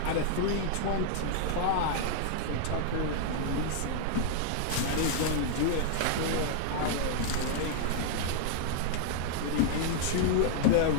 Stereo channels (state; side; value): different; both; correlation -0.01